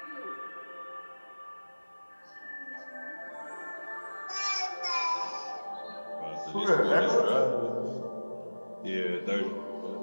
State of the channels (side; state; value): both; inverted; correlation -1.00